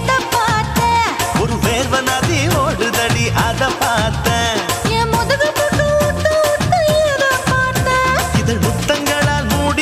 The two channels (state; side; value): identical; both; correlation 1.00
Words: பார்த்தேன் ஒரு வேர்வ நதி ஓடுதடி அத பார்த்தேன் என் முதுகு புட்டு ஊத்து ஊத்து எதை பார்த்தேன் இதழ் முத்தங்களால்